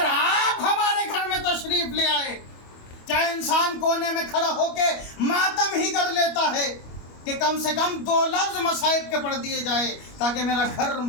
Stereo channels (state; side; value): late; right; 25 ms